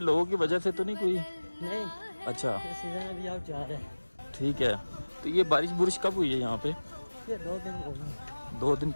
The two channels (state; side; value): inverted; both; correlation -1.00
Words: लोगों की वजह से तो नहीं कोई? नहीं, अच्छा सीजन अभी आउट जा रहा है। ठीक है। तो ये बारिश बुरिश कब हुई है यहाँ पे? ये 2 दिन हो गए। 2 दिन